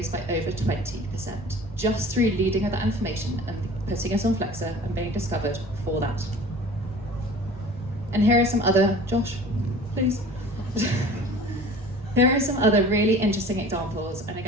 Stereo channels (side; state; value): both; normal; correlation 0.43